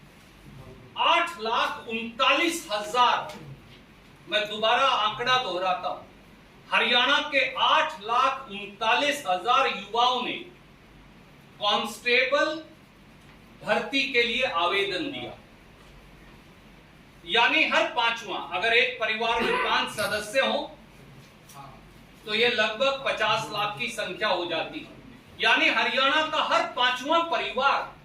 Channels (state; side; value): identical; both; correlation 1.00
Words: 8,39,000, मैं दोबारा आंकड़ा दोहराता हूं, हरियाणा के 8,39,000 युवाओं ने कांस्टेबल भर्ती के लिए आवेदन दिया। यानी हर पांचवा, अगर एक परिवार में 5 सदस्य हो तो यह लगभग 50 लाख की संख्या हो जाती है। यानी हरियाणा का हर 5वां